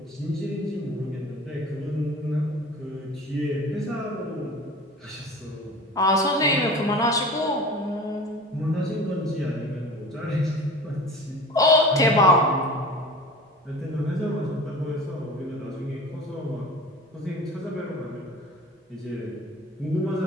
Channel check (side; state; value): both; normal; correlation 0.38